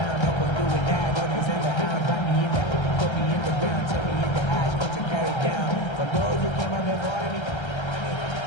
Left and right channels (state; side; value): late; right; 1.3 ms